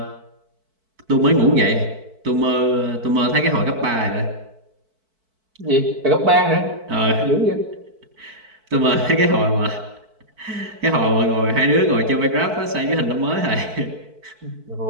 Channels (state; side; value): late; left; 4.5 ms